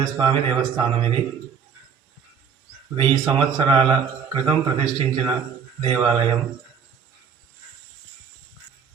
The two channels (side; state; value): left; quieter; 7.0 dB